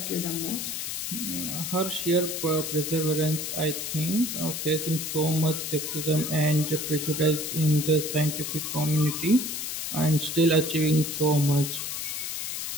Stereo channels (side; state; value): left; noise; hiss, 4 dB below the sound